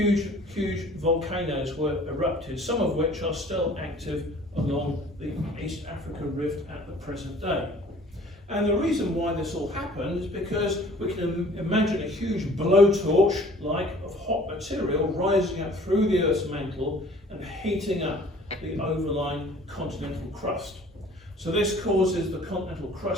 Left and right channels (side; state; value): both; normal; correlation 0.51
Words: volcanoes were erupted, some of which are still active along the East African rift at the present day. And the reason why this all happened is because we can imagine a huge blowtorch of hot material rising up through the Earth's mantle and heating up the overlying continental crust. So this causes the continental